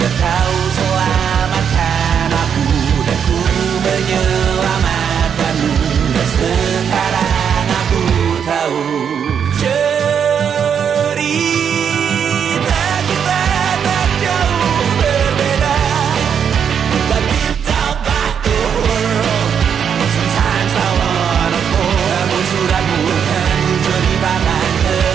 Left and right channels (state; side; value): quieter; left; 7.6 dB